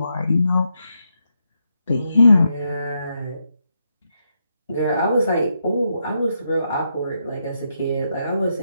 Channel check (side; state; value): both; inverted; correlation -0.82